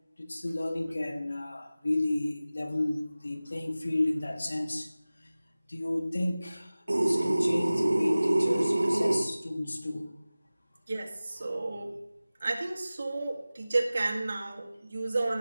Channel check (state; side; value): inverted; both; correlation -0.97